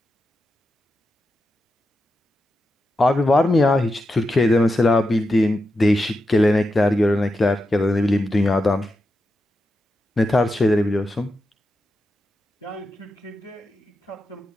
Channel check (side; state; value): both; normal; correlation 0.88